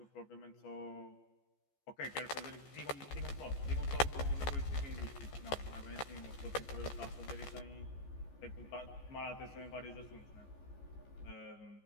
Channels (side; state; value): right; late; 14 ms